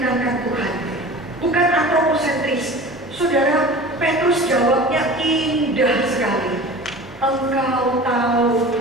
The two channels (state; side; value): normal; both; correlation 0.38